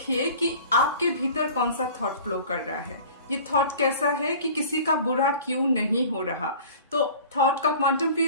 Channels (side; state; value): both; inverted; correlation -0.43